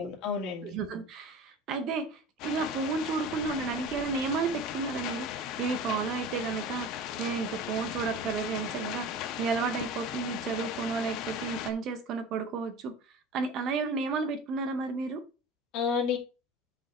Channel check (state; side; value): normal; both; correlation 0.36